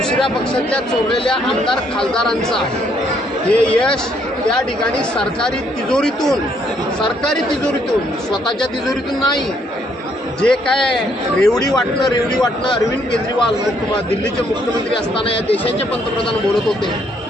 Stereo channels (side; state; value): both; normal; correlation 0.69